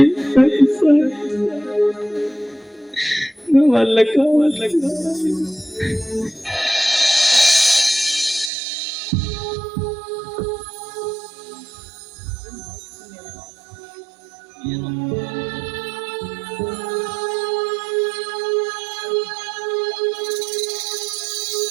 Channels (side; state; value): left; drops out; at 8.5 s